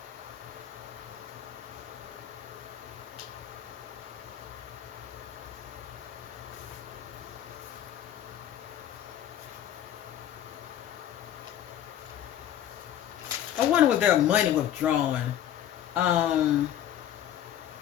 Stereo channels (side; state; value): right; quieter; 11.1 dB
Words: I wonder was there money withdrawn. I'm